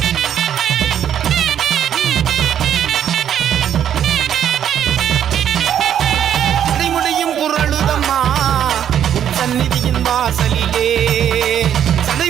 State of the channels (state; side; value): quieter; left; 9.7 dB